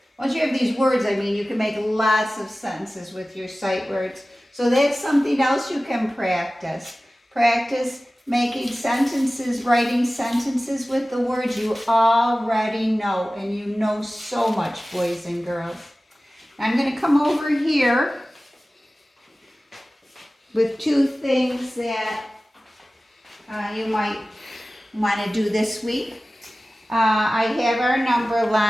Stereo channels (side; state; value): both; normal; correlation 0.96